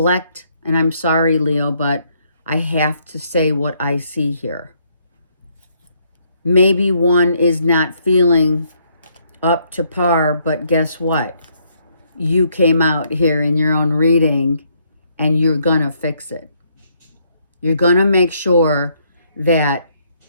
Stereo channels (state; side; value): inverted; both; correlation -0.70